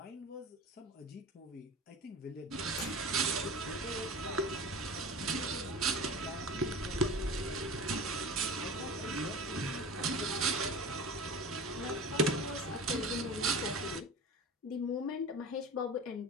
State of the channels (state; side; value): normal; both; correlation 0.34